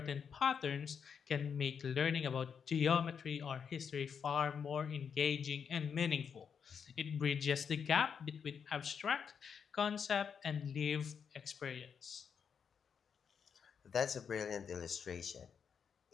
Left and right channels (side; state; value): right; quieter; 6.9 dB